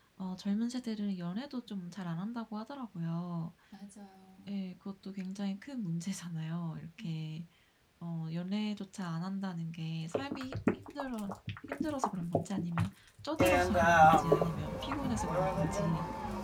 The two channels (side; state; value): both; identical; correlation 1.00